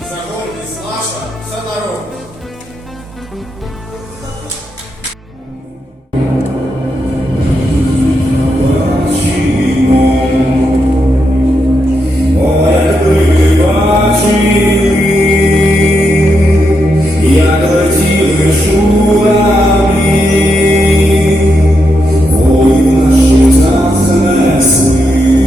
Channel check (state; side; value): normal; both; correlation 0.83